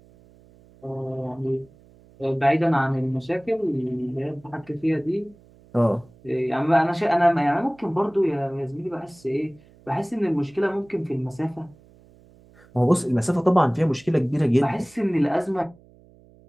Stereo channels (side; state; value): right; noise; hum, 27 dB below the sound